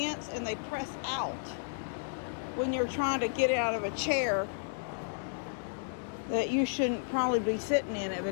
and they press out when you're trying to get out of a chair that you shouldn't probably be sitting in,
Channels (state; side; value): silent; right; digital silence